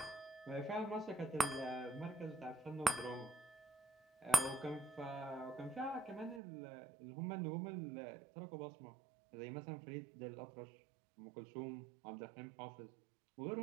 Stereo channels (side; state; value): left; drops out; at 6.4 s